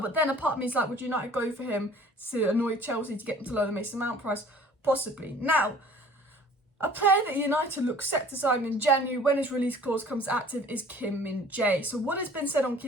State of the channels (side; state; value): both; normal; correlation 0.50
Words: then a part of me is like, would United go for him to annoy Chelsea to get them to lower the Mason Mount price? Possibly. Now, a player that United look set to sign in January when his release clause comes active is Min-Jae. So what has been said on